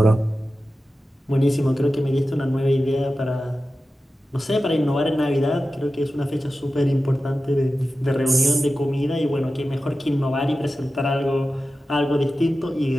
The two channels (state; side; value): normal; both; correlation 0.94